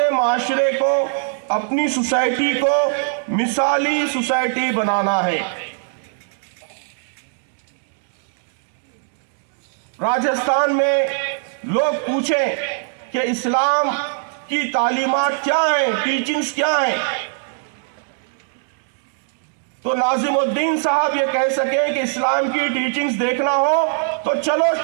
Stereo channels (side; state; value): left; silent; digital silence